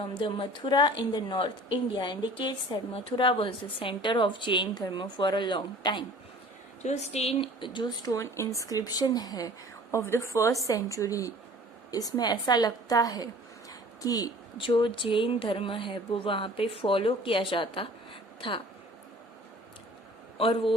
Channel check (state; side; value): normal; both; correlation 0.48